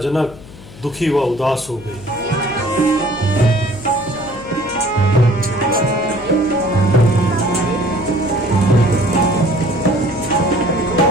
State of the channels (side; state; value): left; noise; hum, 18 dB below the sound